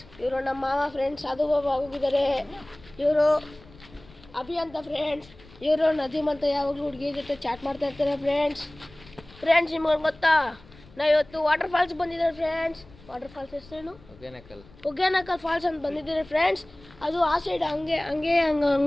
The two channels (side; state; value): left; noise; rumble, 23 dB below the sound